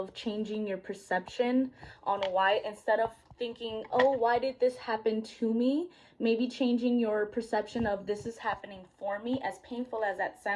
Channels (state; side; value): identical; both; correlation 1.00